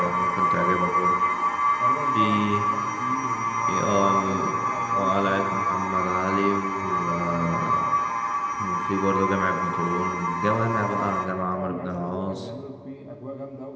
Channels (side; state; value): both; identical; correlation 1.00